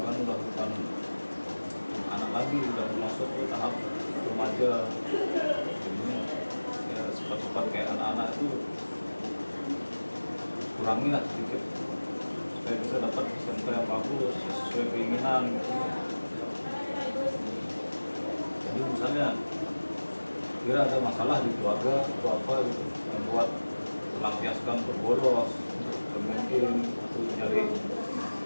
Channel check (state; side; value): inverted; both; correlation -1.00